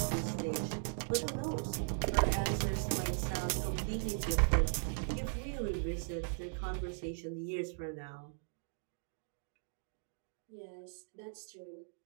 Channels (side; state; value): left; silent; digital silence